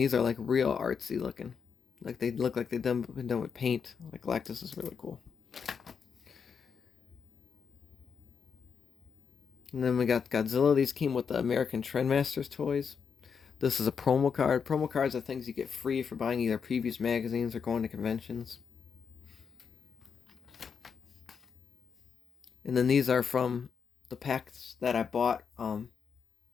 are like real artsy looking. Like they look like they've been done with paint. Like Galactus is really cool. And then we got Godzilla. These came with the American Trendmasters toys. This is a promo card. Promo cards are things you get free for buying either previous magazines or going to conventions. And then these are from the packs that I bought to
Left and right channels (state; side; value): quieter; right; 6.4 dB